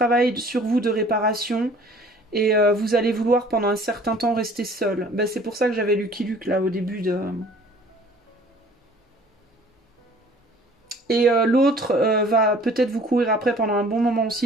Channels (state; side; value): normal; both; correlation 0.51